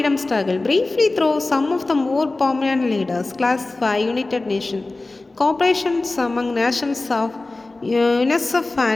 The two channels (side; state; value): right; quieter; 3.2 dB